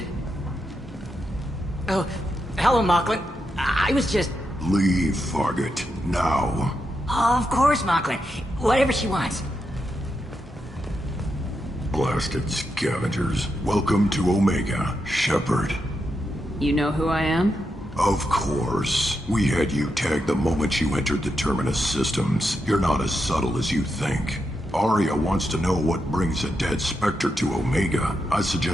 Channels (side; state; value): both; normal; correlation 0.85